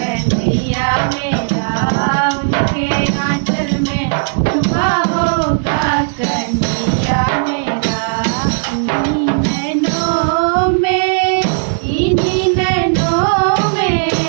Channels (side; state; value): left; silent; digital silence